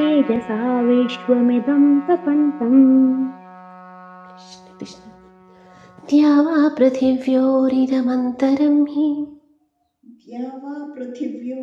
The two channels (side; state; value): both; identical; correlation 1.00